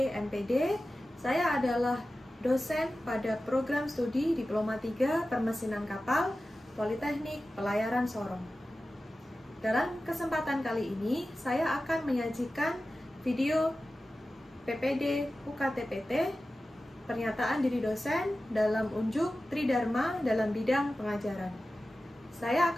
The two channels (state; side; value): normal; both; correlation 0.95